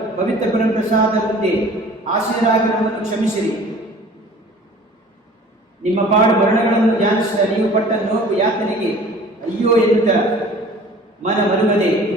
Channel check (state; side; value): normal; both; correlation 0.47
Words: ಪವಿತ್ರ ಪರಪ್ರಸಾದ ಮುಂದೆ ಆಶೀರ್ವಾದ ನಮ್ಮನ್ನು ಕ್ಷಮಿಸಿರಿ. ನಿಮ್ಮ ಪಾಡು ಮರಣಗಳನ್ನು ಧ್ಯಾನಿಸಿದ ನೀವು ಪಟ್ಟ ನೋವು ಯಾತನೆಗೆ ಅಯ್ಯೋ ಎನ್ನುತ್ತ ಮನ ಮರುಗದೆ